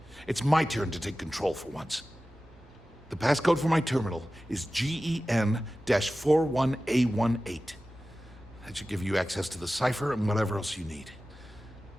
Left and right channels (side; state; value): both; normal; correlation 0.95